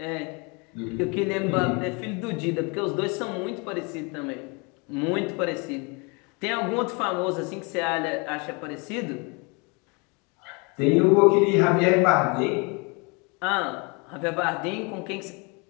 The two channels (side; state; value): right; quieter; 30.9 dB